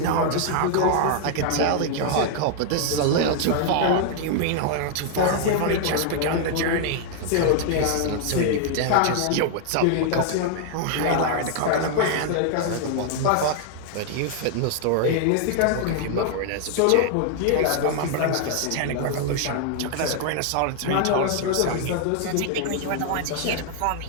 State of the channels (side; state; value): both; different; correlation 0.00